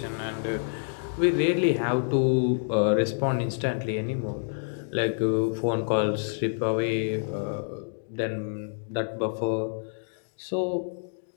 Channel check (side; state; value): right; silent; digital silence